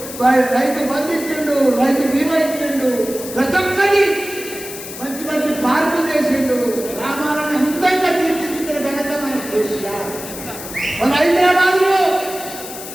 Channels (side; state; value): left; noise; hiss, 11 dB below the sound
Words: రైతు బంధు ఇచ్చిండు, రైతు బీమా ఇచ్చిండు, ప్రతి ఒక్కరి మంచి మంచి పార్కులు చేసిండు. గ్రామాలను అందంగా తీర్చిదిద్దిన ఘనత మన కేసీఆర్. మన హైదరాబాద్ లో